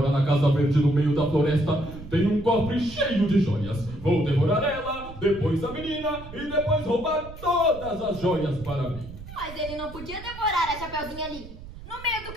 na Casa Verde no meio da floresta tem um cofre cheio de joias. Vou devorar ela, depois a menina e depois roubar todas as joias para mim. Mas ele não podia devorar a Chapeuzinho ali, no meio do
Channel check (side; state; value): right; noise; rumble, 14 dB below the sound